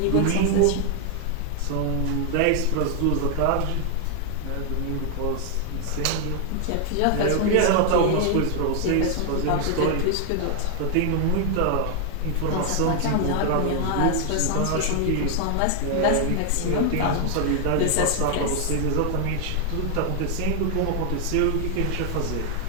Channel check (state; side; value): different; both; correlation 0.00